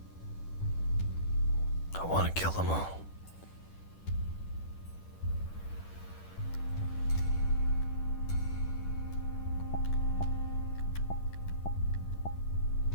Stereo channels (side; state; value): right; late; 10 ms